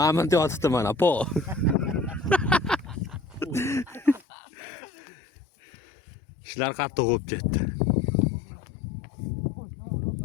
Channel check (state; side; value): drops out; right; at 4.2 s